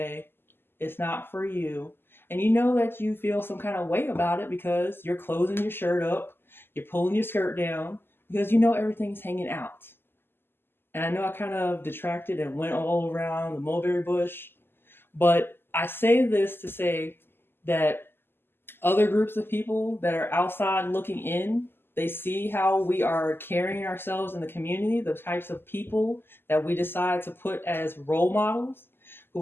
It's not for you. And you know that you feel some kind of way about it because you're closing your shirt up, you're pulling your skirt down, because you know everything's hanging out. And I know I kind of detracted and went all around the mulberry bush, but I say this to say that other groups of people that are outside looking in, they see how we are carrying ourselves in the community, the types of people that we decide to put as role models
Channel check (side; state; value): right; late; 0.11 ms